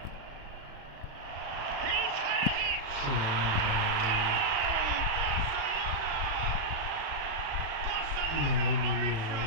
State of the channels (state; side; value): late; left; 36 ms